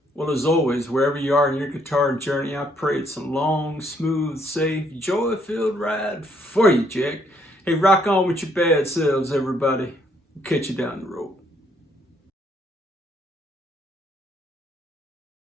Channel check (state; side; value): normal; both; correlation 0.69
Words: Well, as always, wherever you are in your guitar journey, I pray it's a long, smooth, safe, joy-filled ride for you, Jack. Hey, rock on with your bad selves, everybody. Catch you down the road.